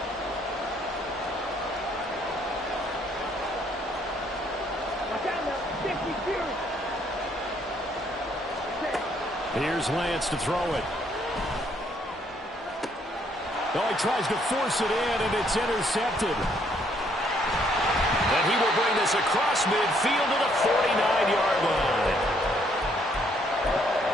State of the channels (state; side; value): normal; both; correlation 0.68